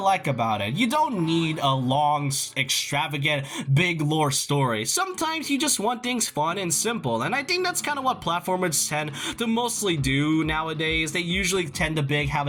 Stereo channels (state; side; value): identical; both; correlation 1.00